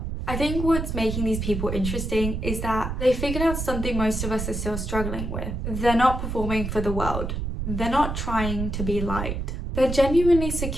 I think what's making these people interesting is that they figured out something most of us are still struggling with. They're not performing for the world. They're not trying to be liked. They're genuinely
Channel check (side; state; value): right; noise; rumble, 3 dB below the sound